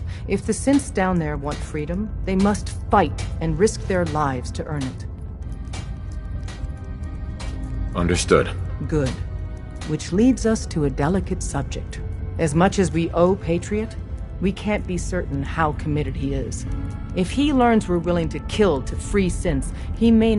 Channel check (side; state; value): both; identical; correlation 1.00